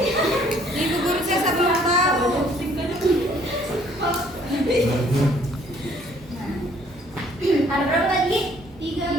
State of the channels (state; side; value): normal; both; correlation 0.61